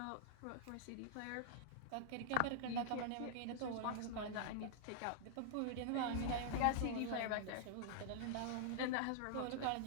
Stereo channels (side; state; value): both; different; correlation -0.01